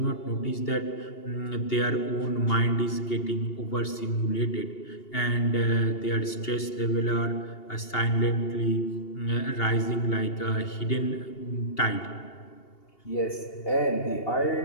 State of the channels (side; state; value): right; late; 2.8 ms